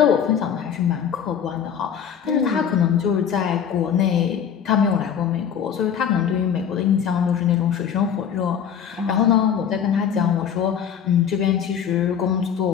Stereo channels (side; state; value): right; quieter; 8.1 dB